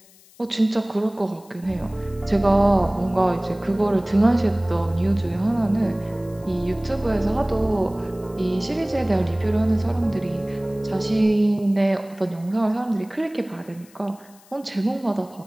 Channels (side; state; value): left; noise; hiss, 27 dB below the sound